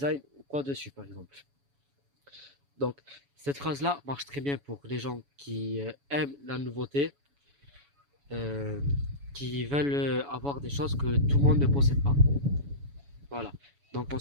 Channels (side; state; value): left; late; 7.1 ms